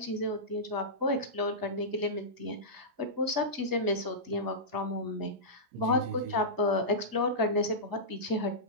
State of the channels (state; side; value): late; left; 16 ms